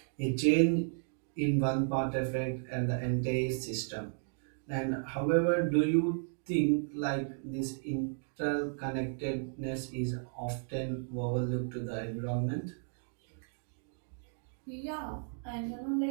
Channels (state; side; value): silent; left; digital silence